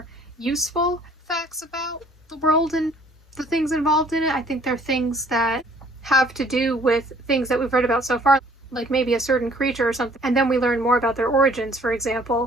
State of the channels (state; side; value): normal; both; correlation 0.58